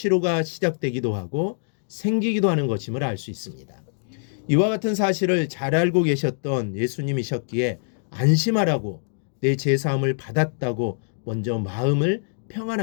시작되기도 하고 생기기도 하는 것임을 알 수 있습니다. 이와 같은 사실을 잘 알고 계셨던 예수님이셨기에 안심하라고 내 죄사함을 받았다고 먼저 마음을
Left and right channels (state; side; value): silent; right; digital silence